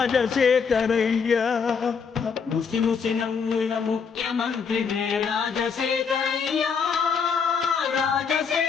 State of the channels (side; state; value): right; quieter; 6.0 dB